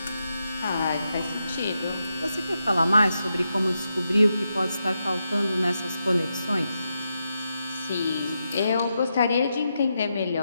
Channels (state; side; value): inverted; both; correlation -0.86